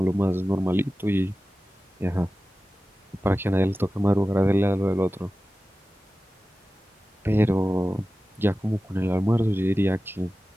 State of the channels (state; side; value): normal; both; correlation 0.95